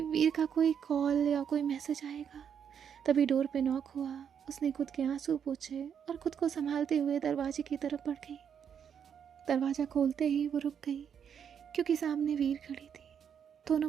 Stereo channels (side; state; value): left; quieter; 7.9 dB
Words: वीर का कोई कॉल या कोई मैसेज आएगा। तभी डोर पे नॉक हुआ। उसने खुद के आंसू पोंछे और खुद को संभालते हुए दरवाजे की तरफ बढ़ गई। दरवाज़ा खोलते ही वो रुक गई, क्योंकि सामने वीर खड़ी थी।